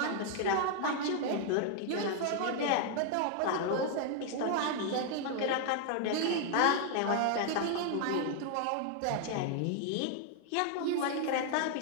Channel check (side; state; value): both; different; correlation 0.00